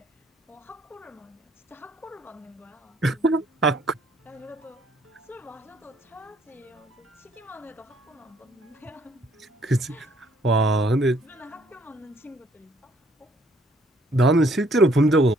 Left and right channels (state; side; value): normal; both; correlation 0.64